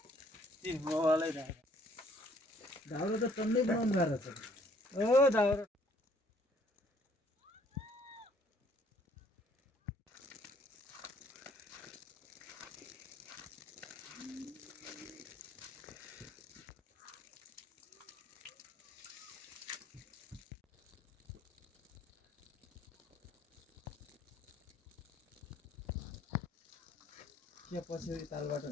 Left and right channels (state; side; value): normal; both; correlation 0.62